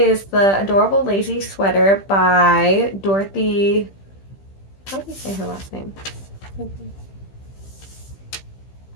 the Adorable Lazy Sweater by Dorothy... How do you say her last name?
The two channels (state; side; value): late; right; 15 ms